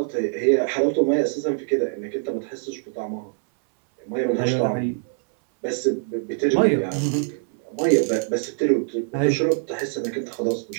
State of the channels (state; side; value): silent; left; 63 dB below the other